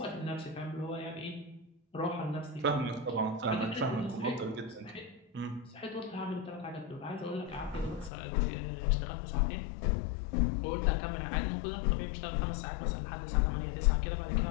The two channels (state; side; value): drops out; right; at 8.1 s